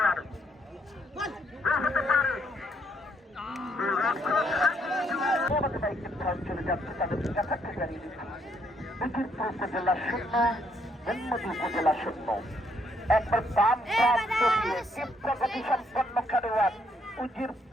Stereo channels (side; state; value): both; normal; correlation 0.72